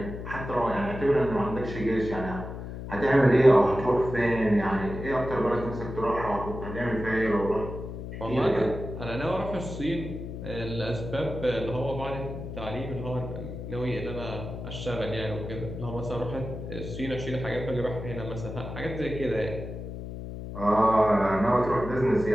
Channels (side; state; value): left; noise; hum, 8 dB below the sound